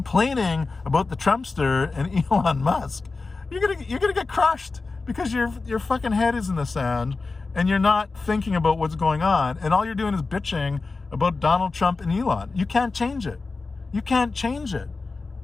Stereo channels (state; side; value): quieter; right; 3.9 dB